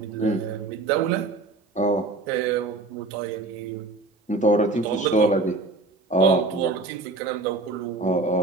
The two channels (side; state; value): left; quieter; 3.3 dB